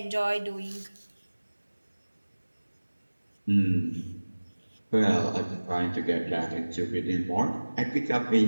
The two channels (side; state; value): both; inverted; correlation -1.00